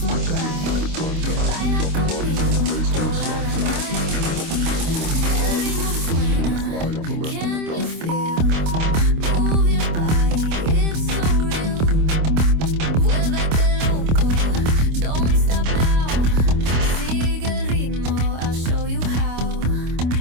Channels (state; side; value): late; left; 26 ms